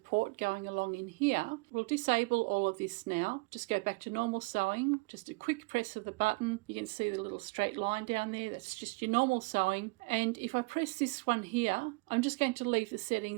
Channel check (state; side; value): quieter; left; 27.6 dB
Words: going along in here. We'll disable all of this now. Just go back to normal sewing. Just a quick press of the button. You can see the little straight line down there. That's just your normal sewing. And if I press this one here, I'm just going to leave the